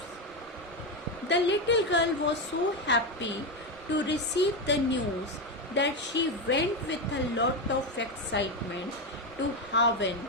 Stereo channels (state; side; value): normal; both; correlation 0.11